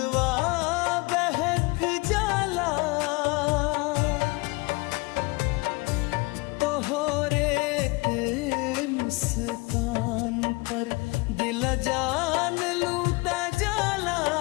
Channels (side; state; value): right; quieter; 25.7 dB